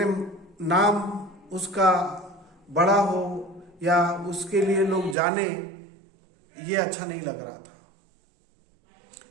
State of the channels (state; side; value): drops out; left; at 5.2 s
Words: नाम उसका बड़ा हो या उसके लिए लोग जाने, ये अच्छा नहीं लग रहा था।